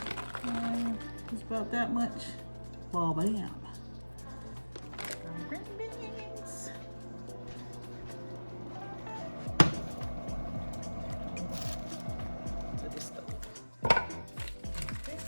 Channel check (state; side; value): inverted; both; correlation -1.00